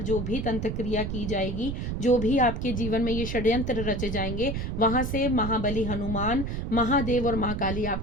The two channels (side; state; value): right; noise; rumble, 3 dB below the sound